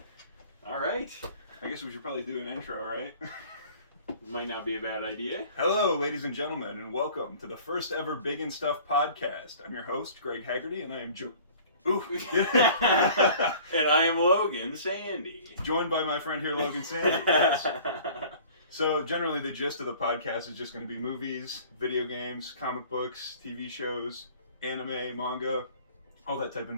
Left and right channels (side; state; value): both; inverted; correlation -0.48